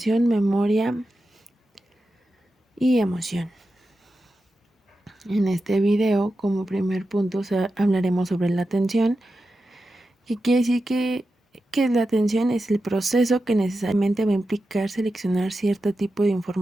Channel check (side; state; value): both; normal; correlation 0.91